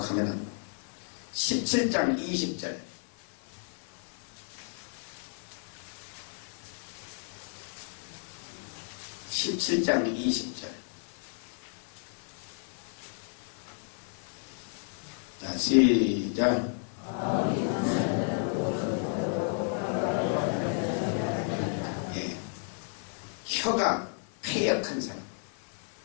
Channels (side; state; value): right; silent; 56 dB below the other